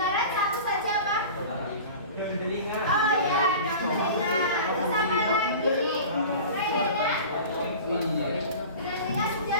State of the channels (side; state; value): both; inverted; correlation -0.37